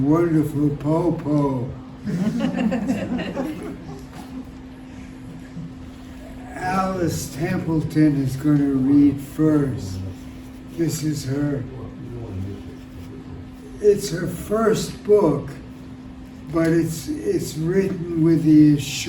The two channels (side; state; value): both; identical; correlation 1.00